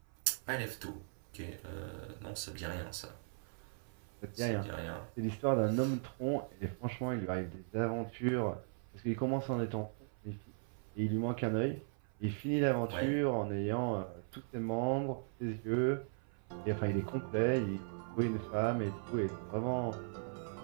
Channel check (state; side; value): silent; left; 52 dB below the other